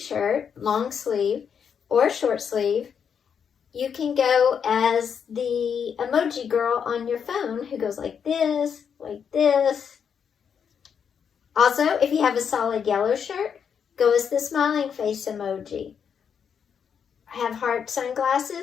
long sleeve or short sleeve, you can go as the emoji girl on your phone who goes like this, like this. Also, if you have a solid yellow shirt, go as the smiling face emoji. Have heart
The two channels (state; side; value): quieter; right; 7.3 dB